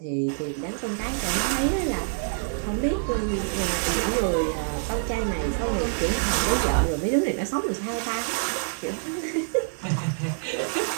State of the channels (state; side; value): silent; left; digital silence